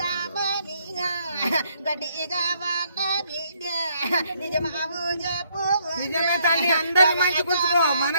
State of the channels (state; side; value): inverted; both; correlation -0.70